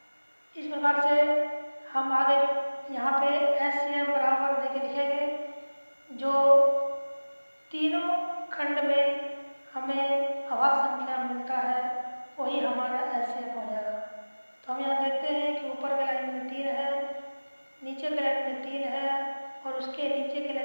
इस प्रकार से हम आगे यहाँ पे HCF बराबर देके लिखेंगे, जो तीनों खंड में हमें अभाज्य संख्या मिलता है वही हमारा HCF हो जाएगा। तो हम यहाँ देखते हैं कि ऊपर के लाइन में 3 है, नीचे के लाइन में 3 है और उसके नीचे के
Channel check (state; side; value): inverted; both; correlation -1.00